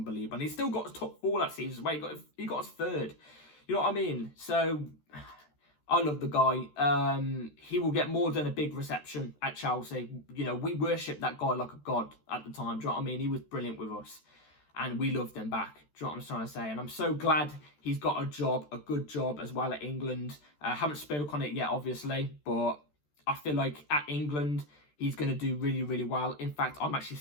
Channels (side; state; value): right; late; 14 ms